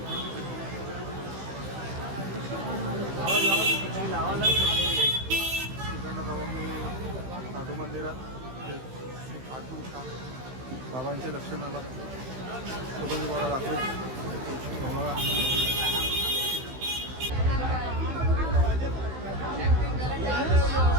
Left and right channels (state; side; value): late; left; 16 ms